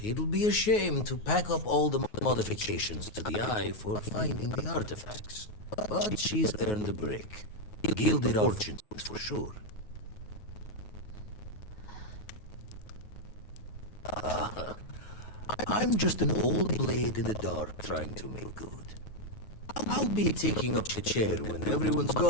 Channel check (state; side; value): late; right; 9.4 ms